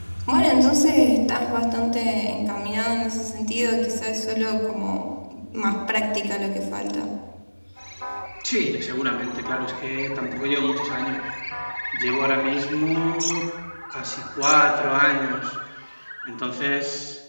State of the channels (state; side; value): inverted; both; correlation -1.00